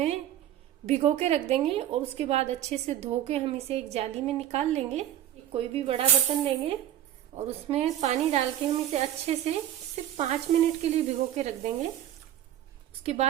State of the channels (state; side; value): quieter; left; 11.7 dB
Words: भिगो के रख देंगे और उसके बाद अच्छे से धो के हम इसे एक जाली में निकाल लेंगे। कोई भी बड़ा बर्तन लेंगे और उसमें पानी डाल के हम इसे अच्छे से सिर्फ 5 मिनट के लिए भिगो के रख देंगे। उसके